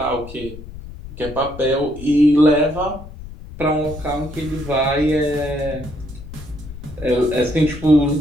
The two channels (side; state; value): left; noise; rumble, 14 dB below the sound